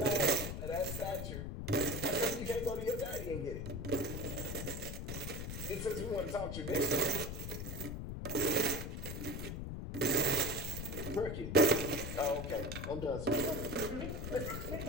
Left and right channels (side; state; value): left; noise; rumble, 5 dB below the sound